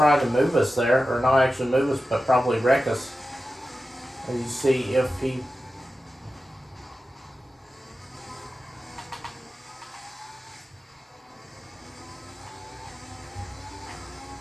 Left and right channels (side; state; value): both; normal; correlation 0.93